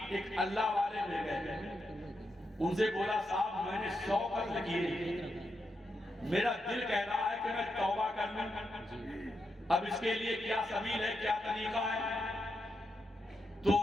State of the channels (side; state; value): both; normal; correlation 0.85